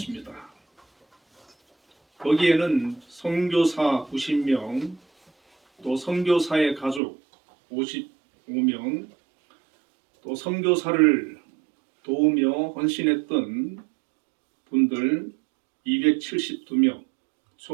거기에는 선교사 90명, 또 선교사의 가족 55명, 또 선교사를 도우며 헌신했던 분들 272명,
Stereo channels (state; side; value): drops out; left; at 7.0 s